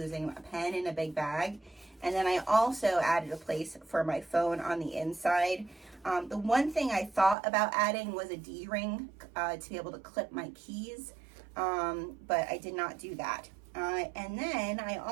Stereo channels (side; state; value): left; drops out; at 7.4 s